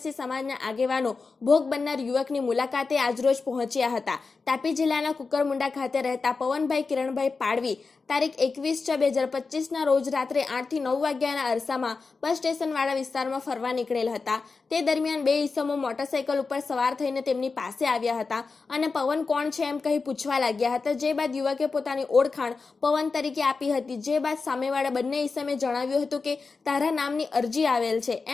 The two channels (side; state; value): right; quieter; 4.4 dB